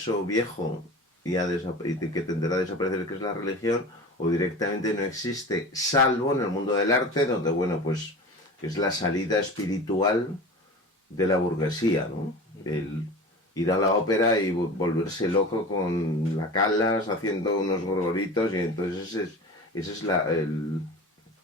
viejo y que tenderá a desaparecer, que es la religión, o directamente no existe, salvo en el mundo del arte, donde, bueno, pues es la salida espiritual de la burguesía, ¿no? El ir a la ópera y volverse loco con la Callas haciendo unos gorgoritos, y entonces ese es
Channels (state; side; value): normal; both; correlation 0.34